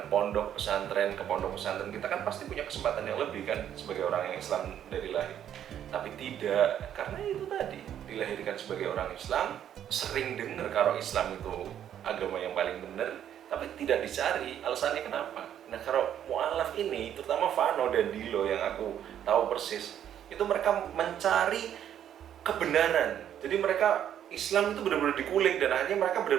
pondok pesantren. Ke pondok pesantren kita kan pasti punya kesempatan yang lebih kan sebagai orang yang Islam dari lahir. Tapi tidak, karena itu tadi dilahirkan sebagai orang Islam, sering dengar kalau Islam itu agama yang paling benar, tapi tidak dicari alasannya kenapa. Nah, kalau mu'alaf ini, terutama Vano dan Dilo yang aku tahu persis, itu mereka mencari kebenaran. Jadi mereka Islam itu benar-benar dikulik, dan akhirnya mereka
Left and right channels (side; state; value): left; quieter; 10.1 dB